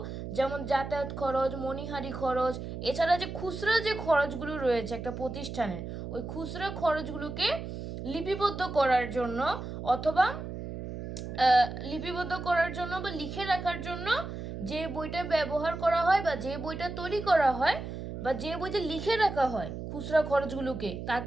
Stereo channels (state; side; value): noise; right; hum, 8 dB below the sound